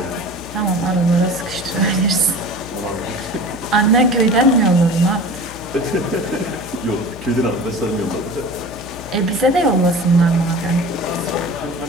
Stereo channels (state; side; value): noise; left; hum, 17 dB below the sound